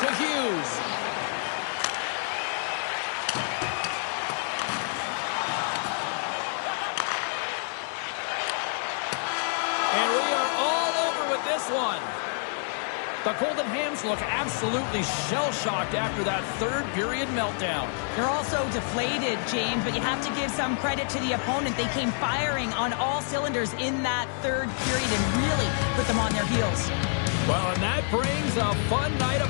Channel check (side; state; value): right; silent; 60 dB below the other